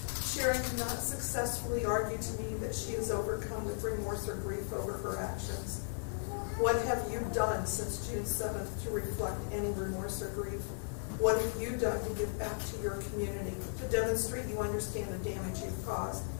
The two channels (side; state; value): right; silent; digital silence